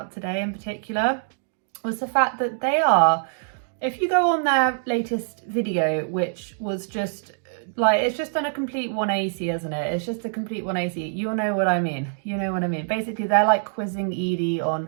today in particular was the fact that they are, if you go on their latest video, which was just, like, it's just done a complete 180, isn't it? It's just a complete 180. You'll know what I mean. You know what I mean. Basically, they're like quizzing Edie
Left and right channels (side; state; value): left; silent; digital silence